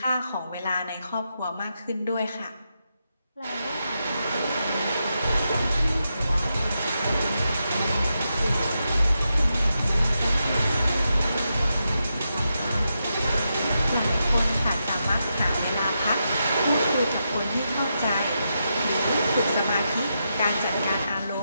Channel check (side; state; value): both; inverted; correlation -0.85